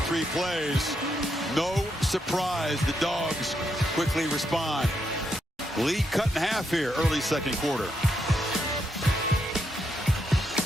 3 plays. No surprise, the Dogs quickly respond. Lead cut in half here, early second quarter.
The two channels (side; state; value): both; normal; correlation 0.80